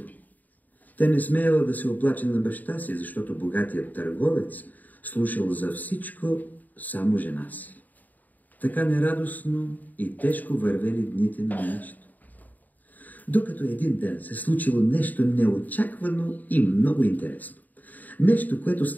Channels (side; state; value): right; late; 0.082 ms